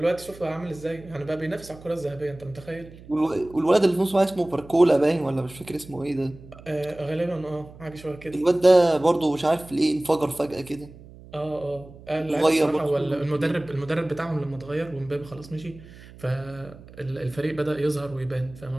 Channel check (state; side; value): noise; right; hum, 19 dB below the sound